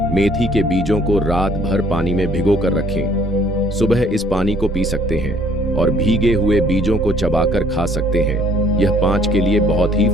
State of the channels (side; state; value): both; normal; correlation 0.60